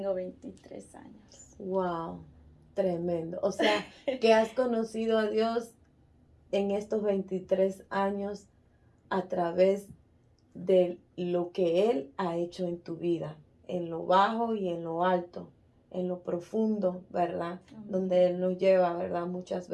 23 años. Wow, tremendo. O sea, que has conocido a Dios en estos 23 años a través de lo que Él ha hecho en tu vida, en lo bajo y en lo alto, en lo profundo, ¿verdad? Donde Él nos lleva, ¿verdad? Muchas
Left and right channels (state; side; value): identical; both; correlation 1.00